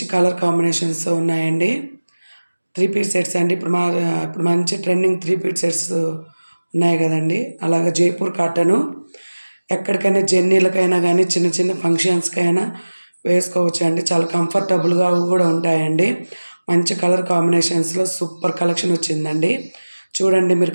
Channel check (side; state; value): both; inverted; correlation -1.00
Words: కలర్ కాంబినేషన్స్‌తో ఉన్నాయండి. 3 పీస్ సెట్స్ అండి. ఇప్పుడు మంచి ట్రెండింగ్ 3 పీస్ సెట్స్ ఉన్నాయి గదండీ! అలాగా జైపూర్ కాటను ఎక్కడికైనా జర్నీలకైనా గానీ, చిన్న చిన్న ఫంక్షన్స్‌కైనా వేసుకోవచ్చండి. చాలా కంఫర్టబుల్‌గా గూడా ఉంటాయండి. మంచి కలర్ కాంబినేషన్స్‌లో సూపర్ కలెక్షన్ వచ్చిందండి. చూడండి, మీరు